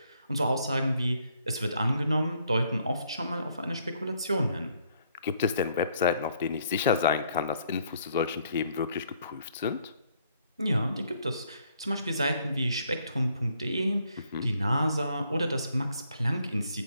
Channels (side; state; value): both; inverted; correlation -0.67